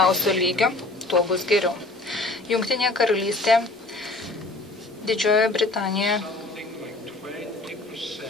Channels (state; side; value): quieter; right; 3.0 dB